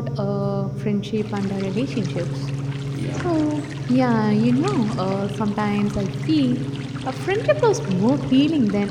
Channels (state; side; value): identical; both; correlation 1.00